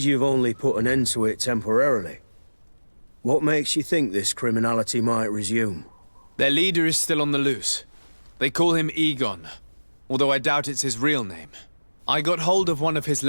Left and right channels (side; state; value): both; inverted; correlation -1.00